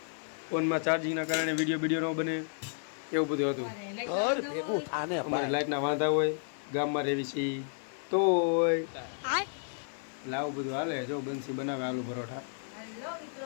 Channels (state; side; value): silent; right; 56 dB below the other